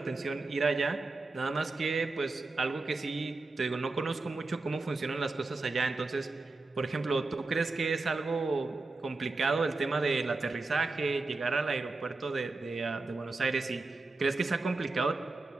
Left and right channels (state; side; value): quieter; left; 3.5 dB